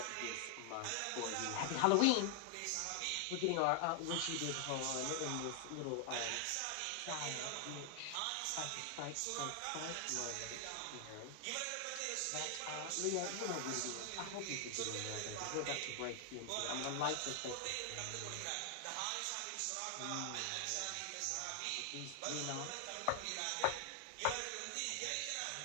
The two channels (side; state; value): both; different; correlation 0.00